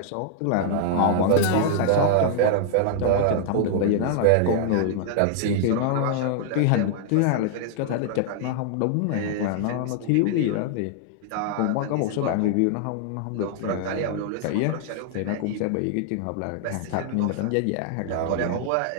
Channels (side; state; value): both; different; correlation -0.01